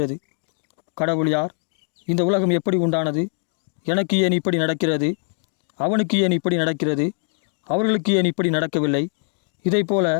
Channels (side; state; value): right; silent; 64 dB below the other